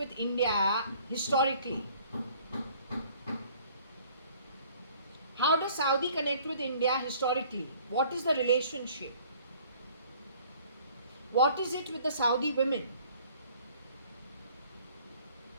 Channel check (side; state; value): both; inverted; correlation -0.55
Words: India historically? How does Saudi connect with India historically? What is the relationship? What is it with the Saudi women?